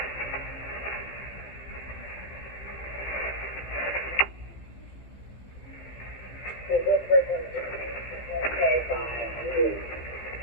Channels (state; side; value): late; right; 15 ms